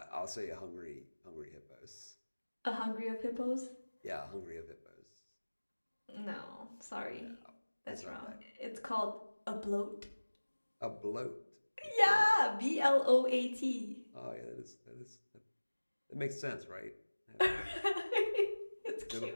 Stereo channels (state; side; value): inverted; both; correlation -1.00